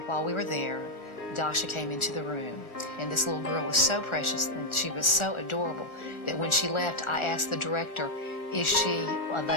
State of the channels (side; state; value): right; late; 1.4 ms